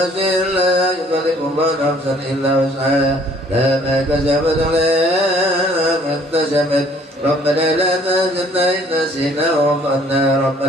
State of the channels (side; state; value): both; normal; correlation 0.58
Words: لا يكلف الله نفسا إلا وسعها لا ما كسبت عليها ما اكتسبت ربنا لا تحزننا إن نسينا وأخطأنا